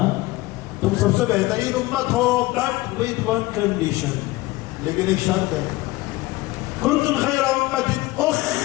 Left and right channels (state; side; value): quieter; right; 19.8 dB